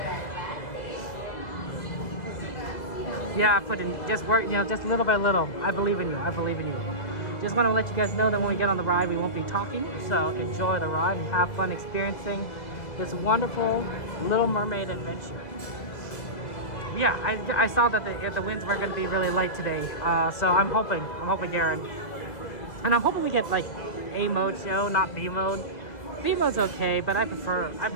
Yeah, put in just work. Just little by little. I believe in you. Just want to let you guys know that when we get on the ride, we won't be talking. So enjoy the ride and have fun experiencing this wonderful Little Mermaid adventure. Yeah, I saw that the winds were going to be really light today, so I'm hoping, Aaron, and I'm hoping we get like A mode show, not B mode. B mode's okay, but I prefer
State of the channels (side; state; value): right; late; 2.0 ms